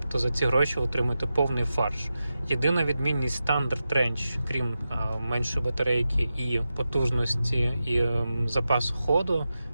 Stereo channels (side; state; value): both; inverted; correlation -0.91